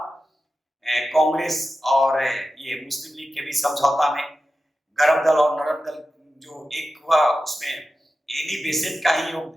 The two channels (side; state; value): both; normal; correlation 0.93